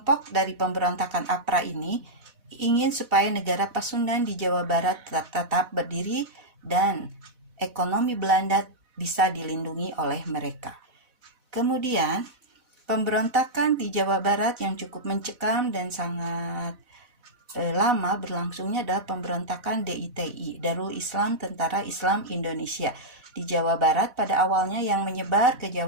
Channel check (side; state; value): left; late; 4.1 ms